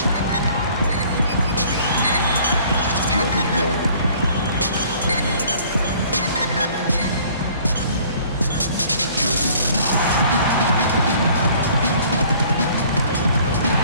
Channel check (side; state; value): both; inverted; correlation -0.55